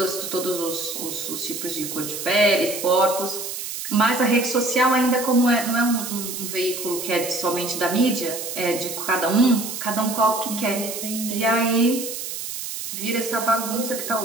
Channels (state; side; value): noise; right; hiss, 6 dB below the sound